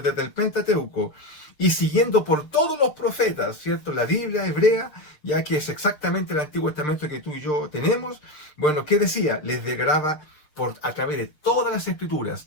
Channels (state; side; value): late; right; 6.7 ms